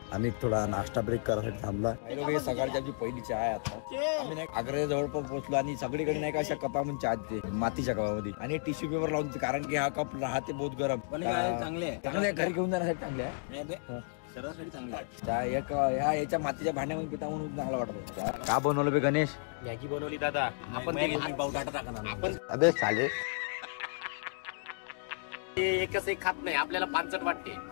आम्ही थोडा नाश्ता ब्रेक करायसाठी थांबला. लोक हे सकाळची आमची पहिली चहा आहे. आता आम्ही नाही आग्रा जवळपास पोहोचलो आणि सगळीकडे नाही का अशा कपामध्ये चहा देते, मातीच्या कपामध्ये, आणि टिश्यू पेपर लावून देते कारण की हा कप राहते बहुत गरम. चांगले घरी घेऊन जाण्यासाठी चांगले आहे, शरीरासाठी चांगले आहे. याच्या मातीच्या भांड्यामध्ये पिता म्हणून चांगला वाटत. का बनवलं बे गणेश? मॅगी बनवली दादा. आपण ते लहान पाव टाटा टाकणार आपण. अबे चालेल, एकच एक खात नाही, आपल्याला पानचट वाटते.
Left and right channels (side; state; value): right; silent; digital silence